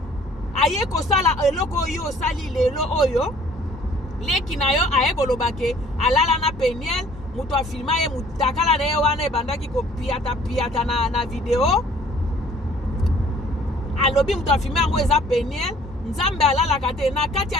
aye kosala eloko yo sali lelo oyo leki na yo aye kolobake alala na Peniel mutu afilma ye mutakala na ye wana ebandaki kopiata na video alobi mutu afilma yango eza Peniel nzambe alalaka te na kati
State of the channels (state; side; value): normal; both; correlation 0.56